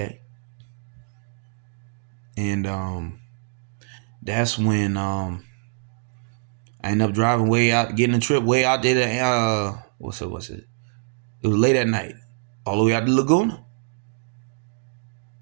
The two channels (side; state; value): left; silent; digital silence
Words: And that's when I ended up driving way out, getting a trip way out there to what's it? It was late at night, all the way out to Laguna.